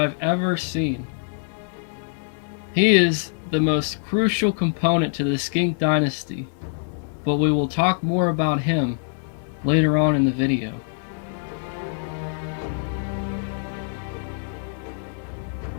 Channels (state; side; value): silent; right; 62 dB below the other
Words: ever seen. He is the most crucial component to the Skink Dynasty, but we will talk more about him later on in the video.